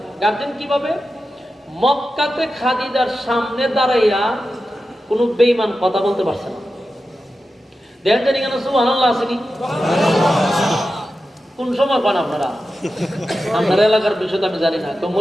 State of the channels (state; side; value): normal; both; correlation 0.92